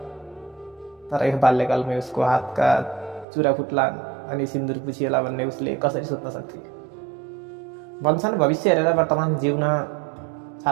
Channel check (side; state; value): left; drops out; at 3.2 s